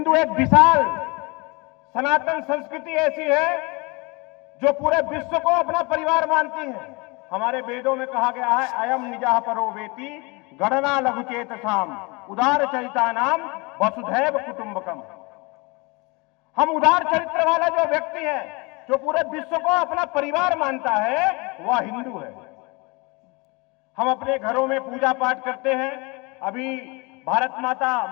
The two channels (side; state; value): right; quieter; 27.4 dB